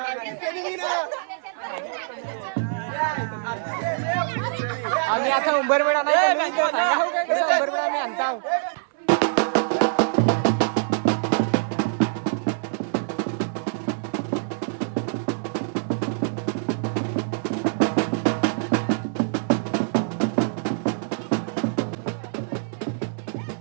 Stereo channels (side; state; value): left; silent; 57 dB below the other